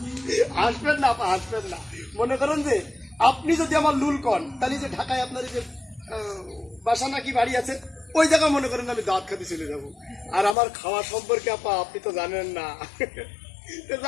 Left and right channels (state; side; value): drops out; right; at 10.6 s